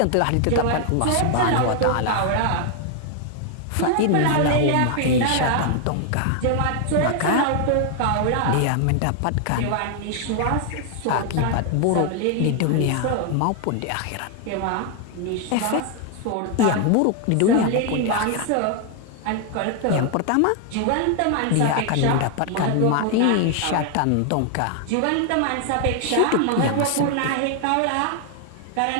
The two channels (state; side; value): different; both; correlation 0.00